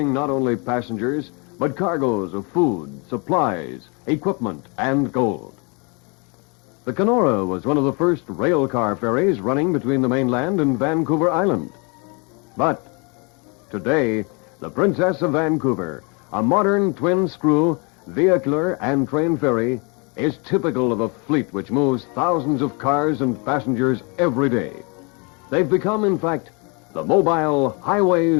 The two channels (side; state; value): right; quieter; 32.3 dB